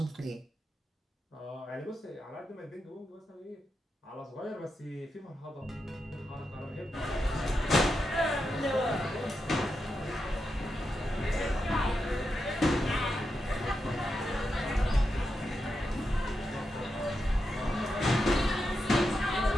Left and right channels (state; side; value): normal; both; correlation 0.87